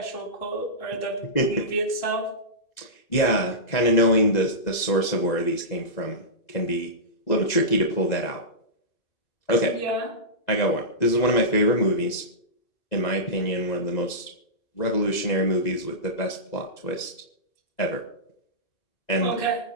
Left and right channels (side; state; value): right; late; 2.0 ms